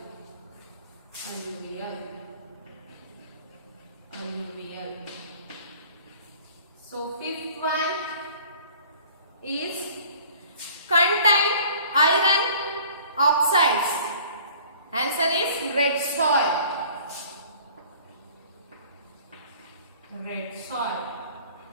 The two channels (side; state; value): both; inverted; correlation -0.50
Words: Alluvial. Alluvial. So fifth one is contain iron oxides. Answer is red soil. Red soil.